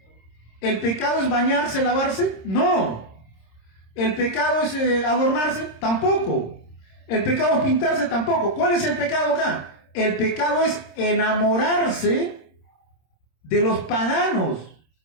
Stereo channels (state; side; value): late; right; 26 ms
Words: ¿El pecado es bañarse, lavarse? No. ¿El pecado es adornarse? Tampoco. ¿El pecado es pintarse? Tampoco. ¿Cuál es el pecado acá? El pecado es enamorarse de los paganos,